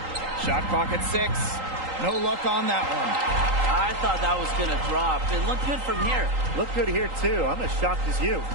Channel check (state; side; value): late; left; 3.8 ms